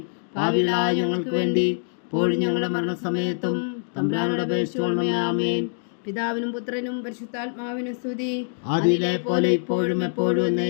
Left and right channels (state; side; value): silent; right; digital silence